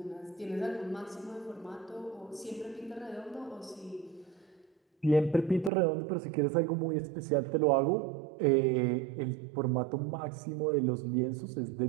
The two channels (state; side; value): drops out; left; at 5.7 s